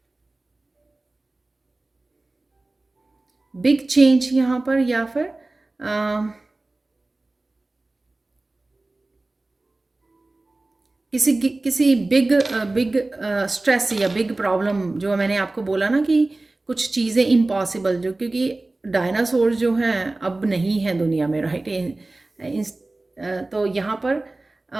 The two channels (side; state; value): left; quieter; 3.0 dB